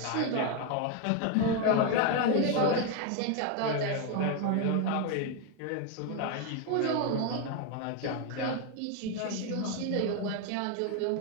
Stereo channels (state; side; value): different; both; correlation 0.01